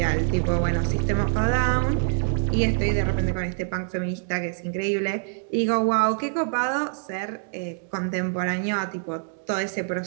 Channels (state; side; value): silent; left; digital silence